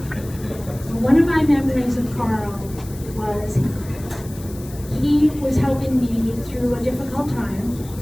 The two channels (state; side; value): noise; left; hiss, 19 dB below the sound